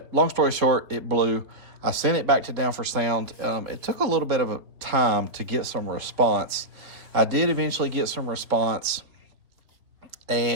long story short, it blew. I sent it back to Down for Sound. It took a little bit of a time to get some response. I did eventually get some response,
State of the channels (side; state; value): left; late; 3.5 ms